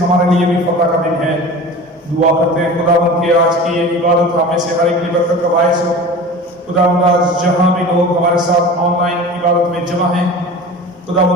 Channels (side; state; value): both; normal; correlation 0.36